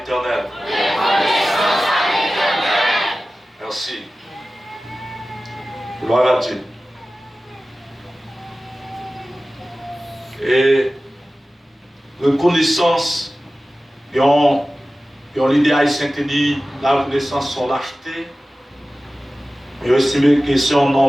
Reconnaissance à l'Éternel. Merci. Gloire à Dieu. Et reconnaissance, et l'idée haïtienne qui dit la reconnaissance sont lâcheté. Et aussi que c'est un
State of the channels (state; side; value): normal; both; correlation 0.96